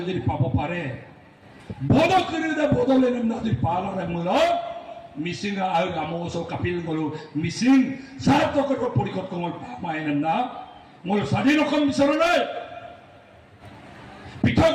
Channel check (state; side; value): identical; both; correlation 1.00